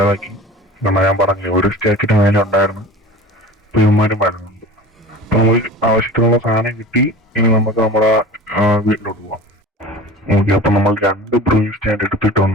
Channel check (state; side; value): normal; both; correlation 0.38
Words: കാരണം ഞാൻ പറഞ്ഞു ഒരു സ്റ്റാക്കിന്റെ മേലെ ഉണ്ടായിരുന്നു. ഇപ്പൊ ഇവന്മാരും വരുന്നുണ്ട്. അപ്പൊ നമുക്ക് ആവശ്യത്തിനുള്ള സാധനം കിട്ടി. ഇനി നമുക്ക് നമ്മുടെ വീട്ടിലോട്ട് പോവാം. ഓക്കെ, അപ്പൊ നമ്മൾ 2 ബ്രൂയിങ് സ്റ്റാൻഡ്